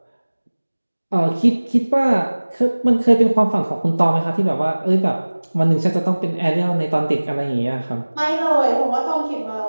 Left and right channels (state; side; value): inverted; both; correlation -1.00